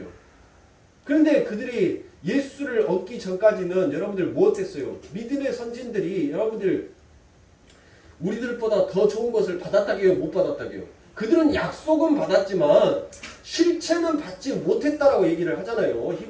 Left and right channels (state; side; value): identical; both; correlation 1.00